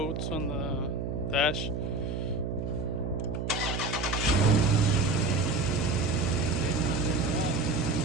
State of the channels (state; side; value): noise; right; hum, 3 dB below the sound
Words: on the dash.